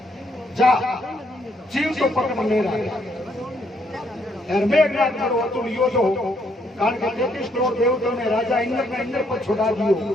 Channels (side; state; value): both; normal; correlation 0.72